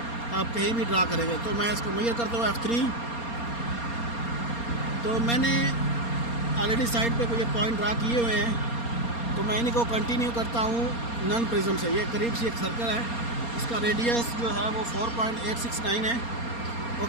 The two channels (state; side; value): late; right; 4.3 ms